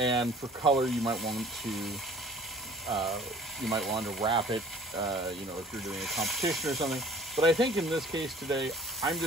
for color, you might want to wrap it, if you're doing a competition or something. But I think in this case today, I'm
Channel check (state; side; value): normal; both; correlation 0.50